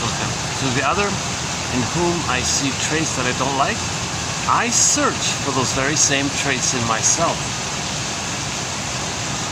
him. To the other, in whom I see traits that I don't like, I search for those very same traits in myself."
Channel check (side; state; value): both; identical; correlation 1.00